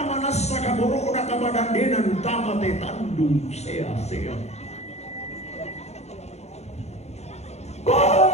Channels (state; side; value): late; right; 0.32 ms